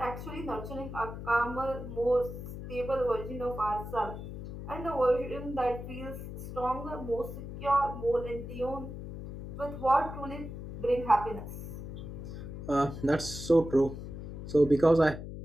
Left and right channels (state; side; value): noise; left; hum, 9 dB below the sound